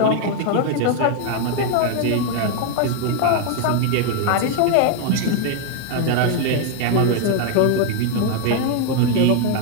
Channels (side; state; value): both; different; correlation 0.00